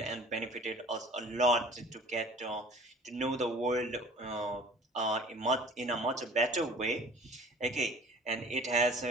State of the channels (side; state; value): both; normal; correlation 0.47